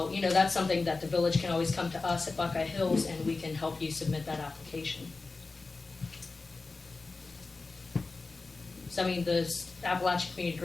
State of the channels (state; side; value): quieter; right; 3.8 dB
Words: you know, that's something that the village can always come to us at Buckeye Hills and we can help you submit that application. So, I mean, the Appalachian Community